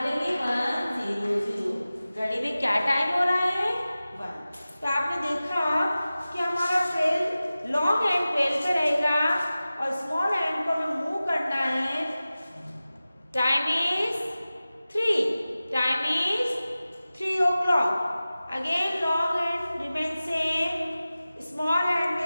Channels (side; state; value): both; inverted; correlation -0.96